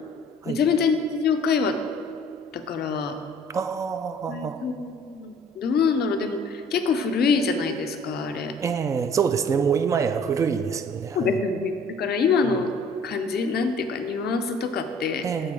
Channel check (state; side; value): normal; both; correlation 0.53